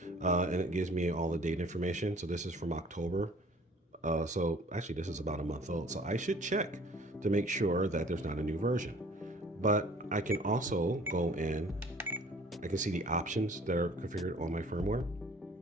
And it gives me all the date information. So this is from October. So actually this is about a month old. So I should check to make sure that there's not a new version. But I can also go in, I can see the options that are configured on my firmware.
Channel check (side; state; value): both; normal; correlation 0.52